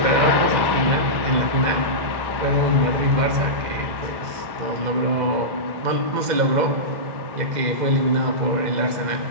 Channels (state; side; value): late; left; 2.1 ms